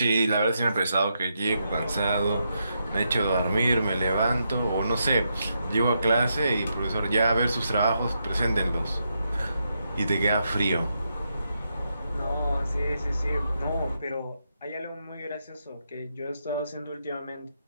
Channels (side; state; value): both; inverted; correlation -0.82